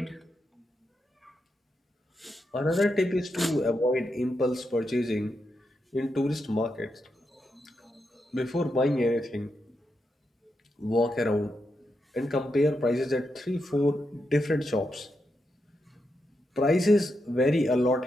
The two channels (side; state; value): both; normal; correlation 0.85